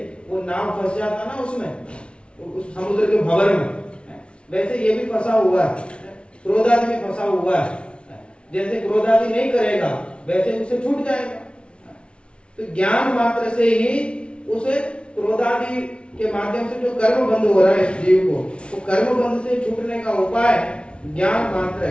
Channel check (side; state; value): right; late; 0.058 ms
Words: वो नाव फंस जाता ना उसमें, उस समुद्र के भंवर में, वैसे ये भी फंसा हुआ है, क्रोध आदि में फंसा हुआ है। जैसे क्रोध आदि नहीं करेगा, वैसे उसे छूट जाएगा। तो ज्ञान मात्र से ही उसे क्रोध आदि के माध्यम से जो कर्म बंद हो रहा है इस जीव को, वो कर्म बंद से छूटने का उपाय ज्ञान मात्र